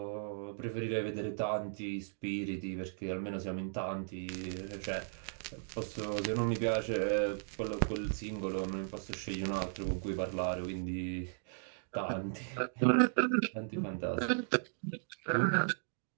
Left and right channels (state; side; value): silent; left; digital silence